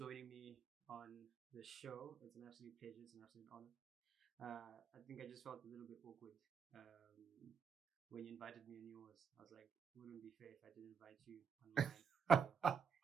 me on the show. It's an absolute pleasure. It's an absolute honor. I think I just felt a little bit awkward when you invited me on yours. I was like, it wouldn't be fair if I didn't invite you on mine.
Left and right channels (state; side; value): quieter; left; 6.1 dB